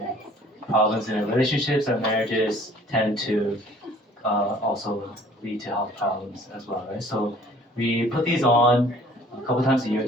problems in relationships or marriages tend to also lead to health problems as well, right? So we put these on a couple times a year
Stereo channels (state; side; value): normal; both; correlation 0.53